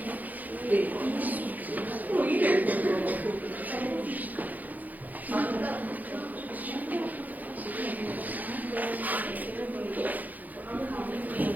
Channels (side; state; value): left; late; 0.081 ms